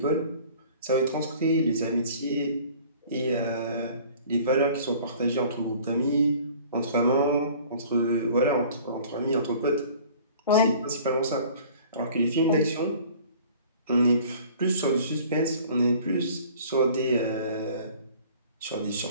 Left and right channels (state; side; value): inverted; both; correlation -0.49